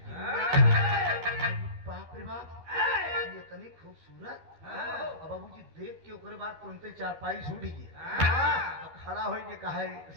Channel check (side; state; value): left; late; 12 ms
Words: बाप रे बाप, ये इतनी खूबसूरत। अब बाबूजी देख के ओकरे बाद तुरंते चारपाई छूट गई, खड़ा हो के कहा